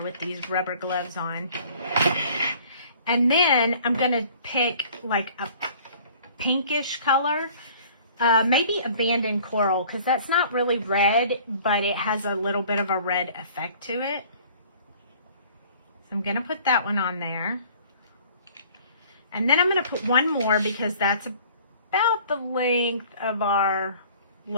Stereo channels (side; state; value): both; inverted; correlation -0.51